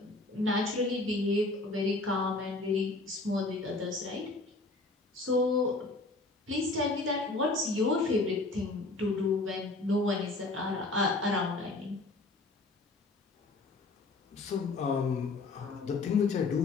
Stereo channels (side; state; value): right; quieter; 3.2 dB